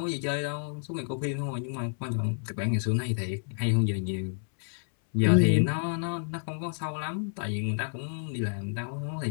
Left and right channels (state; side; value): silent; right; 58 dB below the other